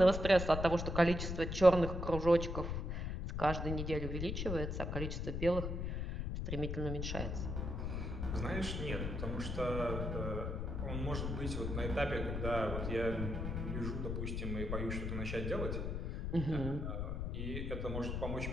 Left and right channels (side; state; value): left; noise; rumble, 3 dB below the sound